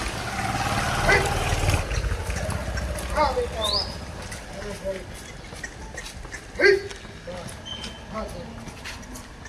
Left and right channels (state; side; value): identical; both; correlation 1.00